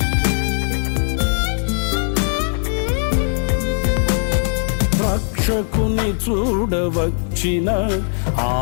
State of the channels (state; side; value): silent; right; 66 dB below the other